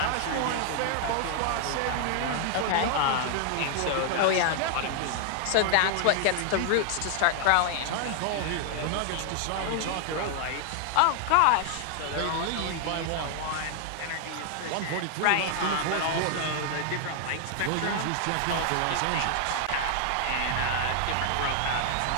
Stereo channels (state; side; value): different; both; correlation 0.00